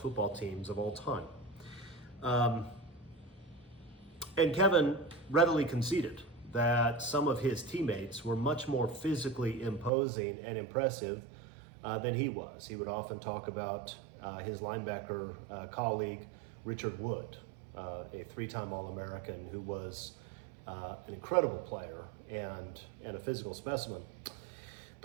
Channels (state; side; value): drops out; left; at 9.9 s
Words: teams of all time. And Kevin readily conceded that some of his teammates were much more physically imposing and impressive than he was. He would often talk about his linebacker colleague, Richard Wood, a 3-time All-American who was an incredible player and a physical specimen.